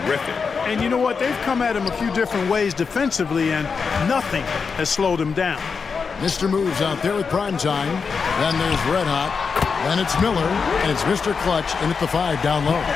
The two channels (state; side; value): quieter; right; 5.4 dB